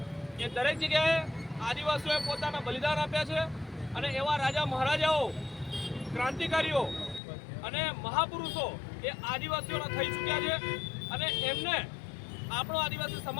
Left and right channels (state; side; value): drops out; right; at 7.2 s